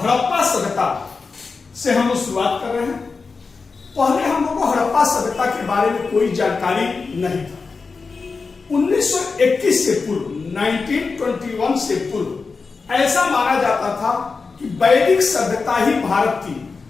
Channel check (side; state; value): right; quieter; 4.5 dB